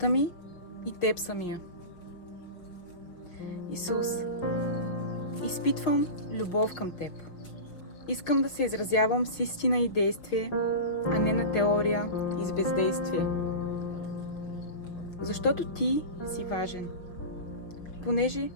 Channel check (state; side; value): late; right; 5.5 ms